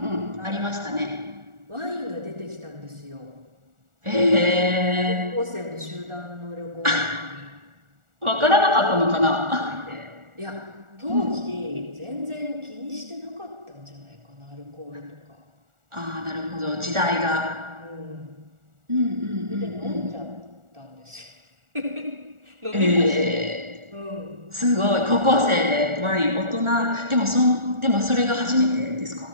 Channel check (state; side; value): late; left; 1.4 ms